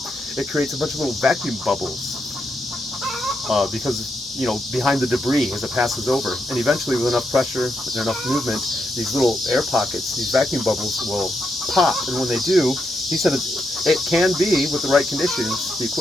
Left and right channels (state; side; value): normal; both; correlation 0.82